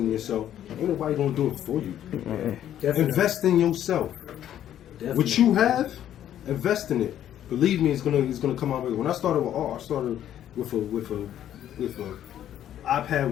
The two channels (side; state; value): right; quieter; 11.1 dB